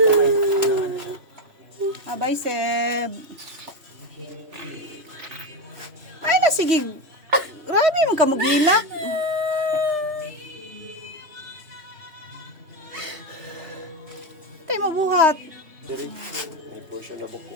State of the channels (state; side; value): late; left; 3.1 ms